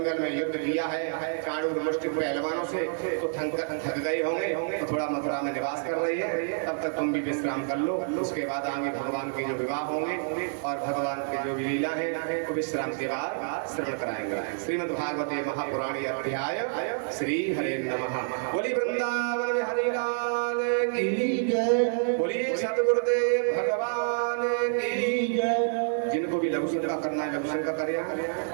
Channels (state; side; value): silent; left; digital silence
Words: में युद्ध किया है चाणूर मुष्टि पहलवानों से, तो थक गए होंगे तो थोड़ा मथुरा में निवास कर रही है। तब तक तुम भी विश्राम कर लो, उसके बाद आगे भगवान के जो विवाह होंगे और भगवान के जो भी लीला है वो विश्राम के बाद श्रवण कराएंगे। श्रीमद् भागवते महापुराणी अध्याय श्री हरे नमः। बोली वृंदावन में हरि लाल की जय, बोलिए सतगुरुदेव भगवान की जय। जिनको भी लघु संका करना है लघु संका करें,